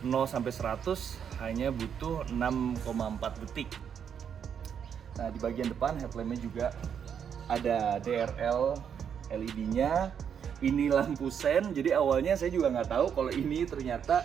0 sampai 100 hanya butuh 6,4 detik. Nah, di bagian depan headlampnya juga ada DRL LED-nya. Ini lampu sen, jadi awalnya saya juga nggak tahu kalau ini ternyata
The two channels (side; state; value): left; quieter; 7.9 dB